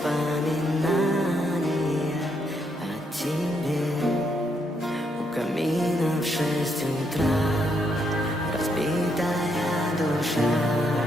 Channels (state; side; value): normal; both; correlation 0.76